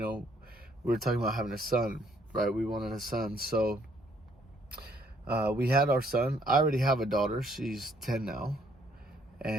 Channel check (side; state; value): both; normal; correlation 0.66